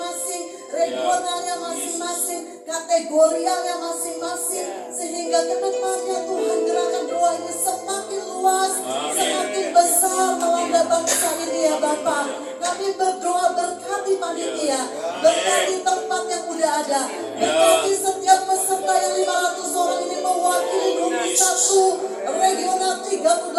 regionalnya masing-masing, kategorialnya masing-masing, sehingga ke depannya Tuhan gerakan doa ini semakin luas, semakin besar melanda bangsa ini ya Bapak. Kami berdoa berkati panitia, berkati tempat yang udah ada, berkati setiap peserta yang 500 orang ini mewakili 21 regional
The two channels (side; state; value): both; identical; correlation 1.00